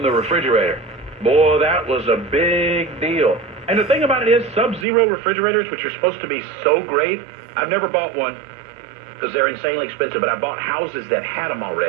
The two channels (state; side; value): drops out; left; at 4.9 s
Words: the refrigerator. Boy, that was a big deal. And the thing about it is, Sub-Zero refrigerators, which are supposed to be so great, I've never bought one because they're insanely expensive, but I bought houses that had them